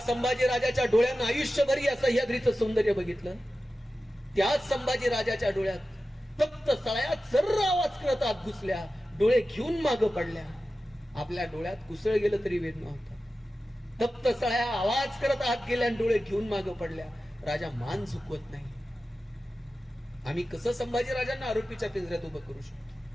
राजाच्या डोळ्यांना आयुष्यभर या सह्याद्रीचं सौंदर्य बघितलं, त्याच संभाजी राजाच्या डोळ्यात तप्त सळ्यात सर्र आवाज करत आत घुसल्या, डोळे घेऊन मागं पडल्या. आपल्या डोळ्यात कुसळ गेलं तरी वेद नव्हता. तप्त सळ्या आवाज करत आत गेल्या, डोळे घेऊन मागं पडल्या. राजा मान झुकवत नाही. आम्ही कसं संभाजी राजांना आरोपीच्या पिंजऱ्यात उभं करू शकतो?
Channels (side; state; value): both; normal; correlation 0.94